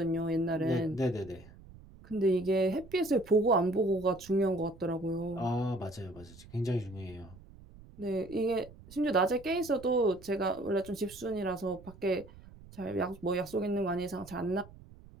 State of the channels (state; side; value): noise; right; rumble, 20 dB below the sound